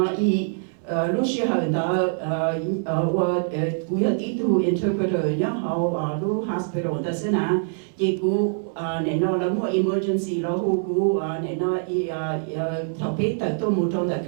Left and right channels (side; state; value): left; silent; 63 dB below the other